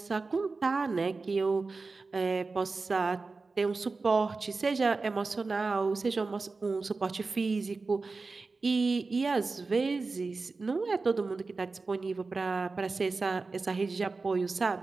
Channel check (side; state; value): left; quieter; 3.9 dB